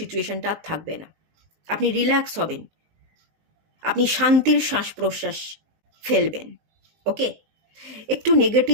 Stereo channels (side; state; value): left; late; 19 ms